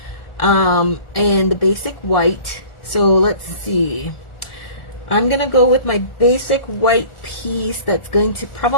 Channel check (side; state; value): right; late; 1.4 ms